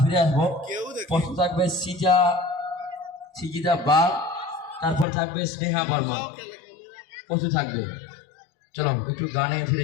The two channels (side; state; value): right; drops out; at 5.1 s